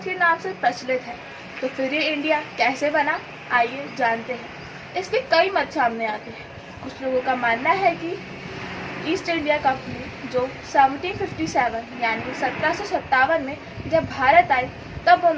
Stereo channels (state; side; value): identical; both; correlation 1.00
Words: के नाम से प्रचलित है, तो फिर ये इंडिया कैसे बना, आइए जानते हैं। इसके कई मत सामने आते हैं। कुछ लोगों का मानना है कि ईस्ट इंडिया कंपनी जो 1757 यानी 1757 में जब भारत आई, तब